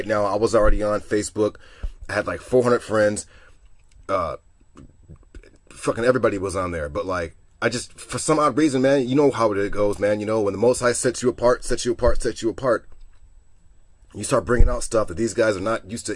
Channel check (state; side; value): identical; both; correlation 1.00